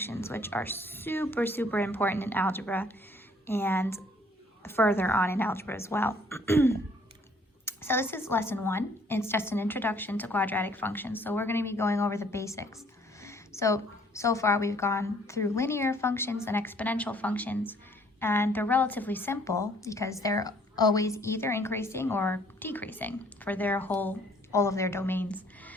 which are super important in algebra and further on in algebra as well. So this is lesson 1. It's just an introduction to quadratic functions. So we're going to be going over the basics. So far we've gone through linear functions and exponential functions, and they're relatively simple because they're always either increasing or decreasing for all of their domains.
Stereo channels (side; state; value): both; normal; correlation 0.60